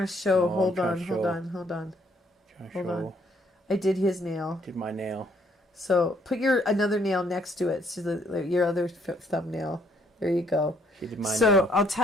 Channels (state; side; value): normal; both; correlation 0.67